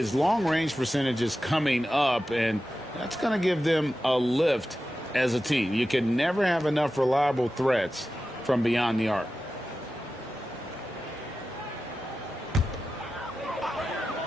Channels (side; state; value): both; normal; correlation 0.93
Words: long-range percentage is coming up, and that's going to give them a lift as a team. You can never have enough reliable threats from beyond the arc.